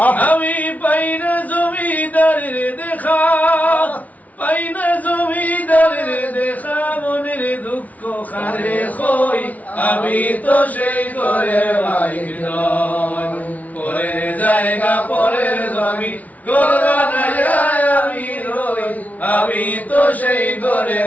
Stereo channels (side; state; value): right; late; 0.072 ms